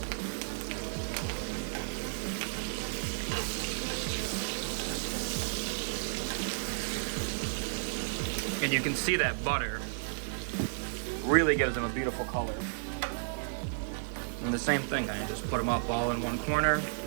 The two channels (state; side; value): silent; left; digital silence